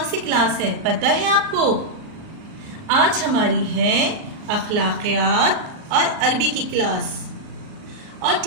سی کلاس ہے پتہ ہے آپ کو؟ آج ہماری ہے اخلاقیات اور عربی کی کلاس، اور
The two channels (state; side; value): late; left; 39 ms